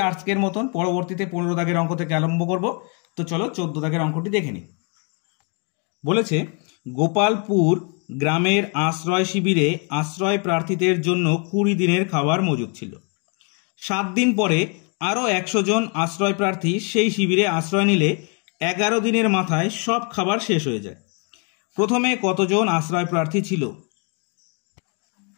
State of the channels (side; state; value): right; quieter; 37.0 dB